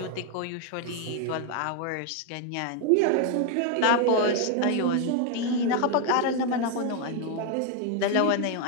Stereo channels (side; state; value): both; different; correlation 0.01